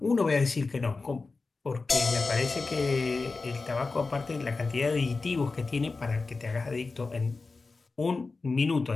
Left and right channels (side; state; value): right; quieter; 3.9 dB